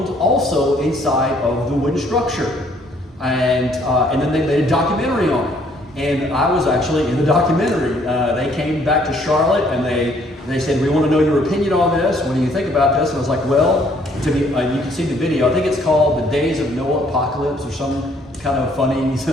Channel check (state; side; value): normal; both; correlation 0.63